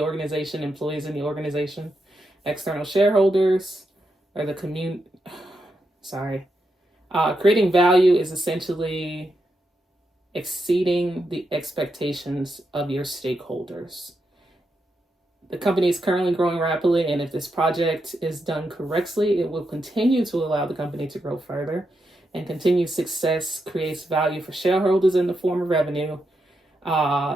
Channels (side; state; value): both; normal; correlation 0.84